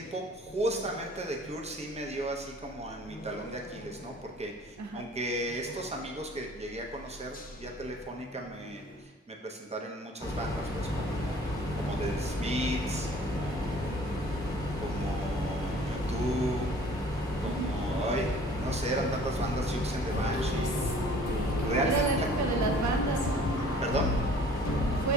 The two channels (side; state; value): both; normal; correlation 0.51